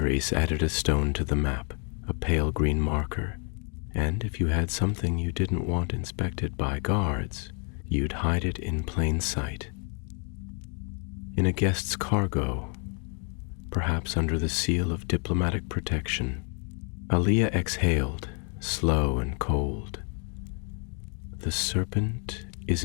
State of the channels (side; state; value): right; quieter; 39.5 dB